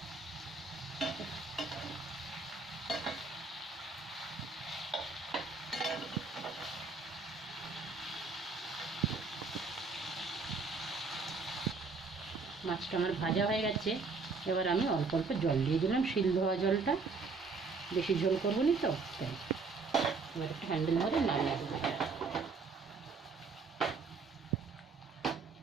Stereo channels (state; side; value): quieter; left; 4.4 dB